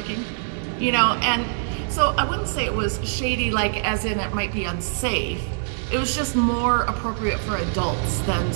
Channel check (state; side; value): silent; left; digital silence